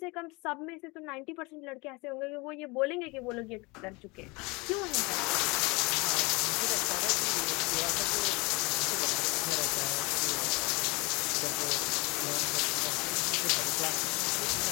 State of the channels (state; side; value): quieter; right; 27.2 dB